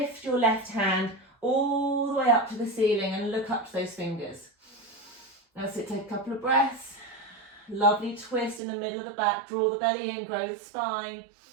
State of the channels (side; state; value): left; drops out; at 8.6 s